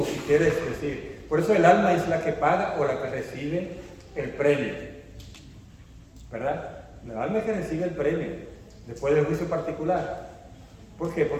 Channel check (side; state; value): both; identical; correlation 1.00